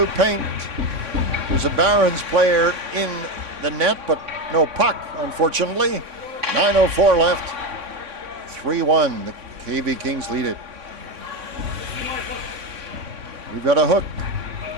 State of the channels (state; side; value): late; left; 3.6 ms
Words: paint. There's a Barons player in the net, but no puck, unfortunately. 9:04 left. 3-1. The KV Kings lead it. We've got a hook.